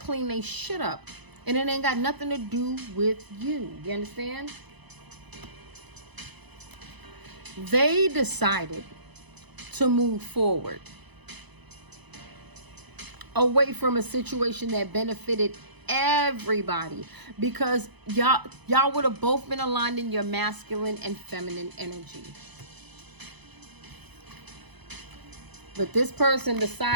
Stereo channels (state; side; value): late; left; 1.0 ms